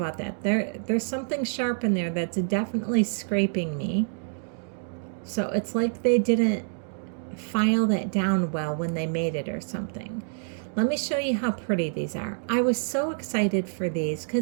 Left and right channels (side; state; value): left; silent; digital silence